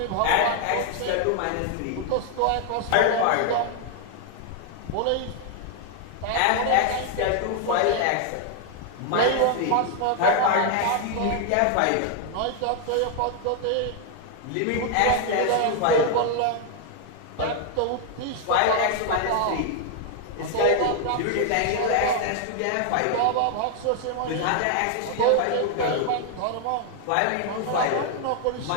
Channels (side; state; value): both; different; correlation 0.00